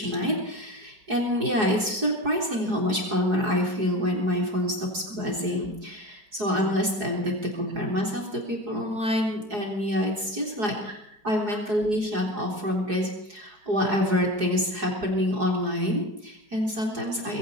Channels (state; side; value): late; left; 4.8 ms